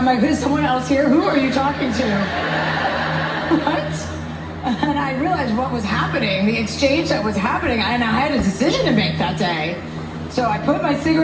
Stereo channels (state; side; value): identical; both; correlation 1.00